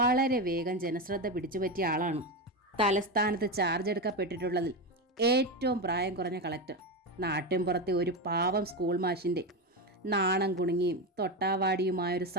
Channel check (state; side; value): normal; both; correlation 0.15